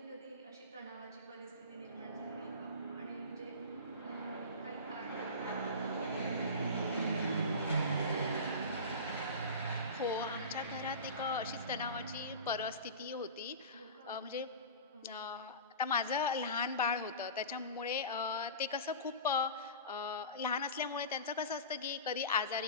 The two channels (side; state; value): both; inverted; correlation -0.31